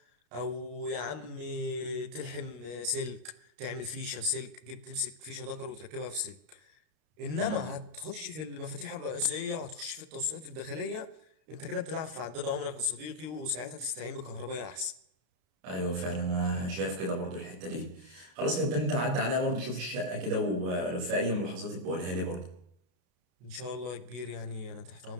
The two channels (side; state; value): left; late; 32 ms